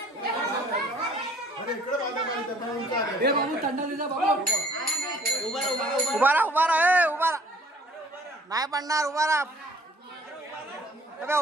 उभा राहा उभा नाही पडणार. उभा राहा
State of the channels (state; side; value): normal; both; correlation 0.57